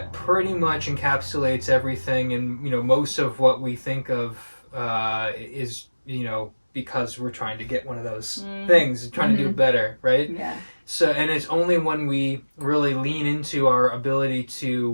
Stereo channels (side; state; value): both; inverted; correlation -1.00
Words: pretty much encapsulates everything, and, you know, most of what we think of is, you know, because we're trying to get one of those things, trying to do better, right? Yeah. So, and it's only when we really lean into our ability